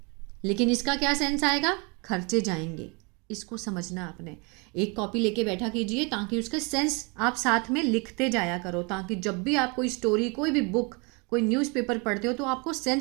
लेकिन इसका क्या सेंस आएगा, खर्चे जाएंगे, इसको समझना आपने। एक कॉपी लेके बैठा कीजिए ताकि उसका सेंस आप साथ में लिखते जाया करो, ताकि जब भी आप कोई स्टोरी, कोई भी बुक, कोई न्यूज़पेपर पढ़ते हो तो आपको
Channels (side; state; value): left; quieter; 31.1 dB